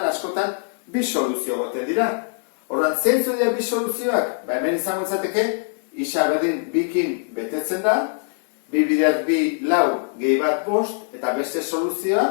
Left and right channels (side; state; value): right; silent; digital silence